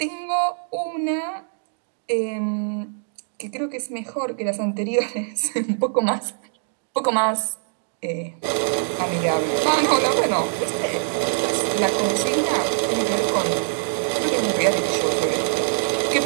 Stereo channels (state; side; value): silent; left; digital silence